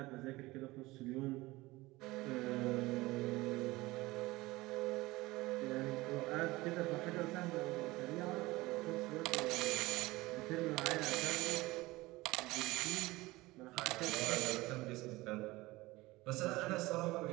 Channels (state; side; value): quieter; left; 20.2 dB